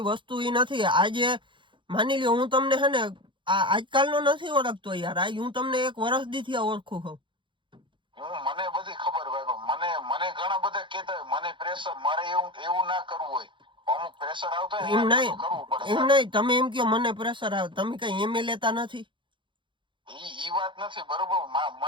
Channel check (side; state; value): left; late; 0.24 ms